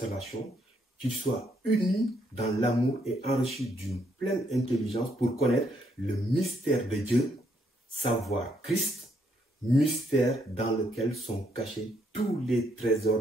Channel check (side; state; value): both; normal; correlation 0.73